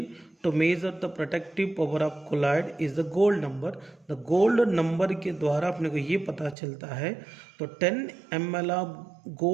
to measure the protective power of colloid is the gold number. The gold number के द्वारा अपने को ये पता चलता है। तो 10 ml ऑफ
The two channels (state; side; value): drops out; left; at 6.6 s